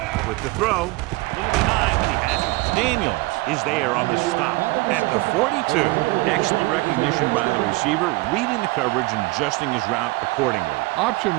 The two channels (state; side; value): quieter; left; 22.3 dB